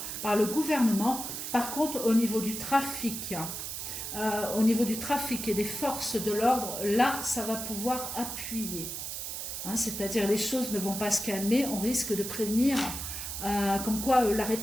par le gouvernement. Par contre, au niveau du trafic, et des forces de l'ordre, là, ça va pouvoir appuyer. C'est-à-dire les choses ne vont pas se calmer, on risque de prévenir, comme quoi la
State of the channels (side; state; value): right; noise; hiss, 6 dB below the sound